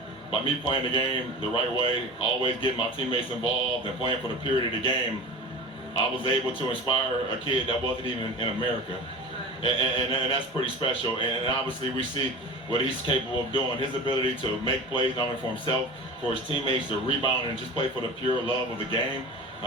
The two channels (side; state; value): both; normal; correlation 0.34